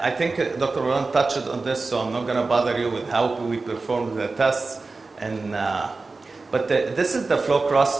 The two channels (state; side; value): quieter; left; 3.8 dB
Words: think Dr. Marwan touched on this, so I'm not going to bother you with how we perform the tests. And, but this is the flow